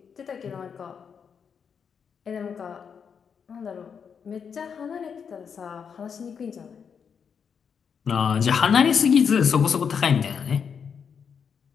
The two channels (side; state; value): right; quieter; 6.8 dB